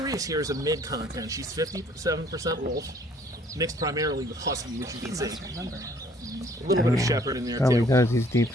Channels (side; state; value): both; normal; correlation 0.59